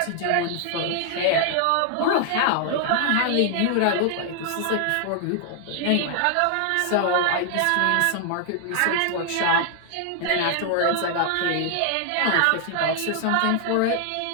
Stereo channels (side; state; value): both; different; correlation 0.00